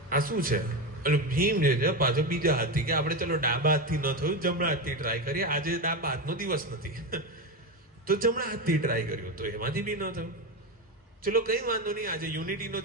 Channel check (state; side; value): normal; both; correlation 0.16